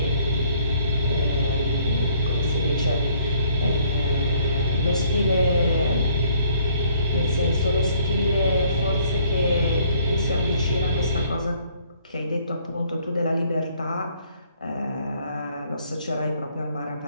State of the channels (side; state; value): both; inverted; correlation -0.63